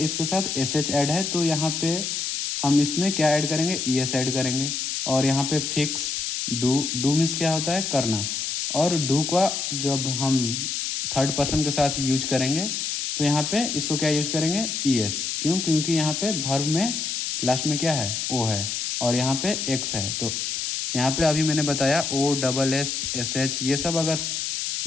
इसके साथ एस एच ऐड है, तो यहाँ पे हम इसमें क्या ऐड करेंगे, ई एस ऐड करेंगे। और यहाँ पे फिक्स डू मीन्स क्या होता है करना, और डू का जब हम थर्ड पर्सन के साथ यूज करेंगे तो यहाँ पे इसको क्या यूज करेंगे ईएस। क्यों? क्योंकि यहाँ पे वर्ब में लास्ट में क्या है ओ है और यहाँ पे एक्स है। तो यहाँ पे अभी मैंने बताया O double S S H ये सब अगर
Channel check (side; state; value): left; noise; hiss, 2 dB below the sound